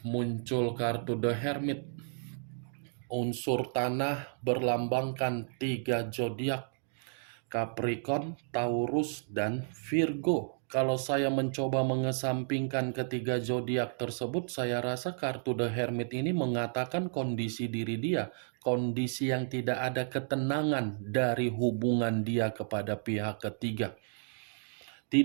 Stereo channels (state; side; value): silent; left; digital silence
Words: Muncul kartu The Hermit. Unsur tanah berlambangkan 3 zodiak, Capricorn, Taurus, dan Virgo. Kalau saya mencoba mengesampingkan ketiga zodiak tersebut, saya rasa kartu The Hermit ini mengatakan kondisi diri dia, kondisi yang tidak ada ketenangan dari hubungan dia kepada pihak ketiga.